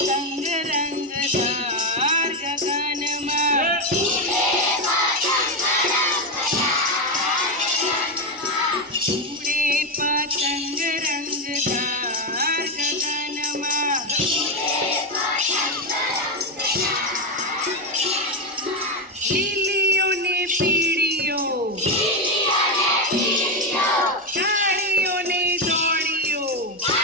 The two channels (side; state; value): both; normal; correlation 0.08